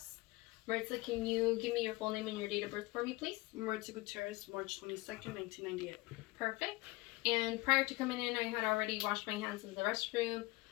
Maritza, can you give me your full name and your date of birth for me, please? Maritza Gutierrez, March 22nd, 1998. Perfect. And prior to coming in, I had already washed my hands in the restroom.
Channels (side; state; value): right; quieter; 21.3 dB